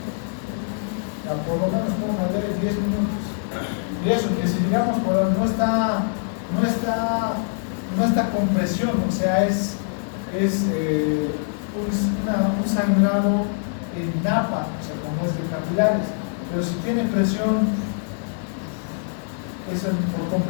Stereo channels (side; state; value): right; silent; digital silence